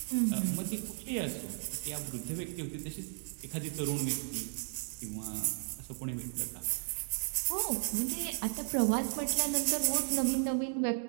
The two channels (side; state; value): left; silent; digital silence